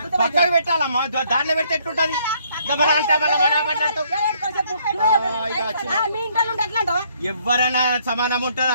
పక్కకు పెట్టాలమ్మా దాంట్లో పెడితే ఎట్లుంటది ఎవరైనా సమానం ఉంటది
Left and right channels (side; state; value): both; inverted; correlation -0.66